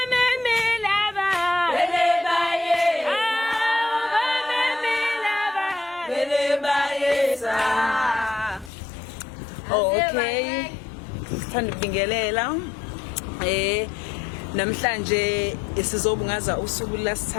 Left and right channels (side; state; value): right; drops out; at 8.7 s